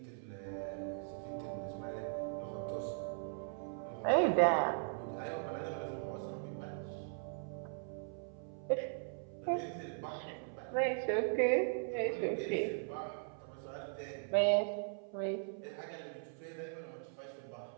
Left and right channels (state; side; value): silent; left; 52 dB below the other